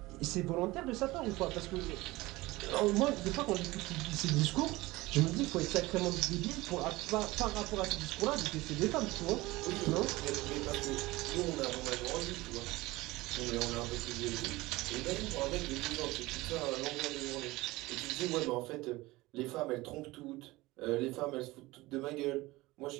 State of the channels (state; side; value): quieter; left; 20.1 dB